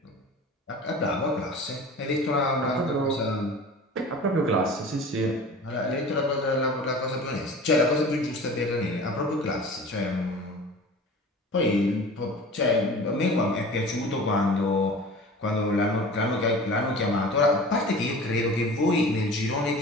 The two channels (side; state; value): both; normal; correlation 0.39